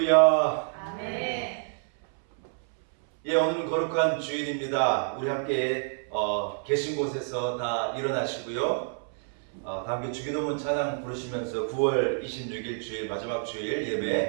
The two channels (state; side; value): silent; left; 59 dB below the other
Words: 아멘. 예, 오늘은 거룩한 주일입니다. 우리 함께 계신 곳에서 다 일어나시고요. 다 함께 주기도문 찬양 부르시면서 9월 26일 주일 마지막 주일